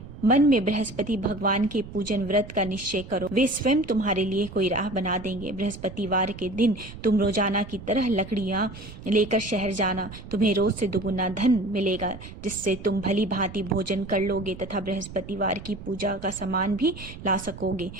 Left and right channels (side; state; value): right; noise; rumble, 14 dB below the sound